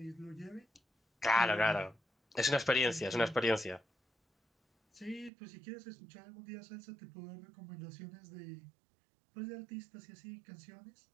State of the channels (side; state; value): left; drops out; at 5.3 s